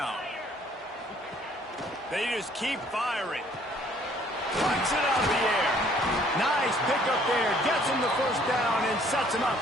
They just keep firing. Flicks it out of the air. Nice pickup there. Gets him the first down and sets him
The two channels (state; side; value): normal; both; correlation 0.60